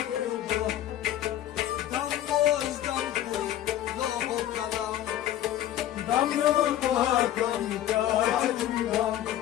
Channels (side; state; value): right; quieter; 12.4 dB